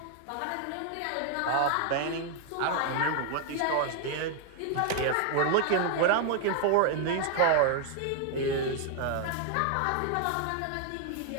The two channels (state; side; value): different; both; correlation 0.00